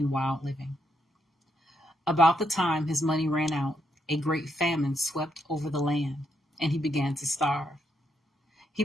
wild living. About the time his money ran out, a great famine swept over the land, and he began to starve. He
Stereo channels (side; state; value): both; normal; correlation 0.78